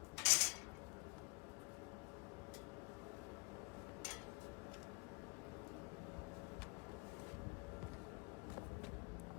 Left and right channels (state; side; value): quieter; right; 30.2 dB